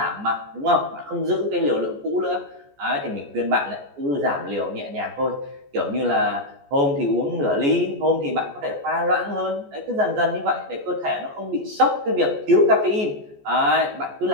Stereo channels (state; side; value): late; left; 14 ms